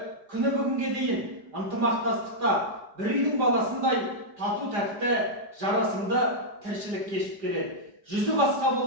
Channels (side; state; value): left; late; 4.9 ms